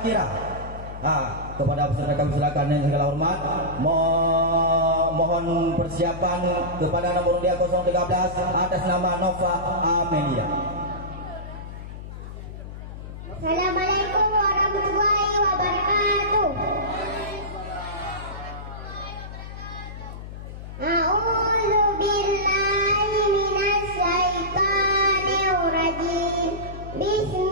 Kepada peserta kami silakan dengan segala hormat mohon persiapan kepada nomor undian 013 atas nama Nova Amelia. Assalamualaikum warahmatullahi wabarakatuh. A'udzu billahi minasy syaithanir rajim.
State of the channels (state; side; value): noise; left; hum, 11 dB below the sound